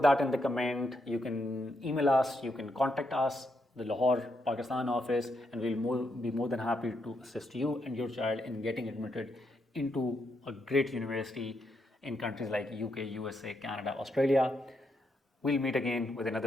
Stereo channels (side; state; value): both; normal; correlation 0.80